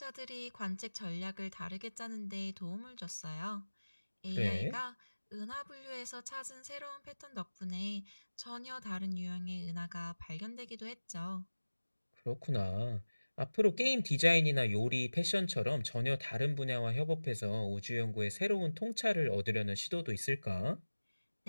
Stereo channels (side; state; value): both; inverted; correlation -1.00